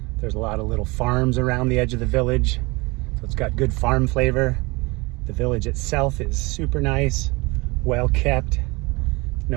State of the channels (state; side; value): quieter; left; 25.0 dB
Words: There's a lot of little farms around the edge of the village. So it's got good farm flavor. The village itself is super nice, well kept.